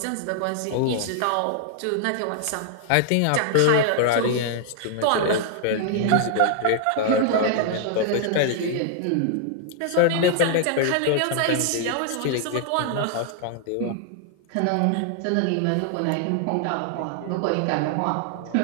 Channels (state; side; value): different; both; correlation 0.00